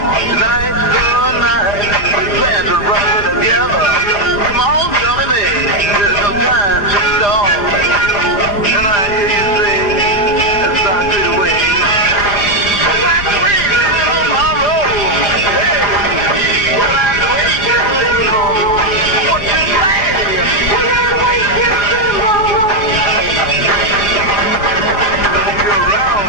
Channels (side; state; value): right; late; 5.0 ms